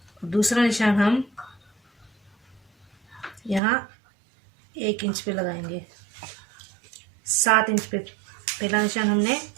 दूसरा निशान हम यहाँ 1 इंच पे लगाएंगे। 7 इंच पे पहला निशान हमने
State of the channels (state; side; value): drops out; left; at 3.6 s